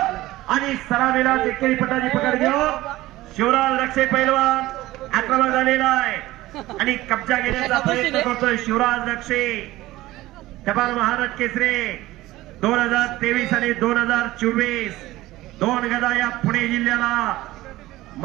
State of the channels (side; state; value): left; quieter; 17.2 dB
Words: आणि सलामीला एकेरी पटाची पकड घेऊन शिवराज रक्षे पैलवान आक्रमण झालेला आहे आणि कब्जा घेण्याचा प्रयत्न करतोय शिवराज रक्षे. जबाल महाराज केसरी 2023 आणि 2024 दोन गदा या पुणे जिल्ह्याला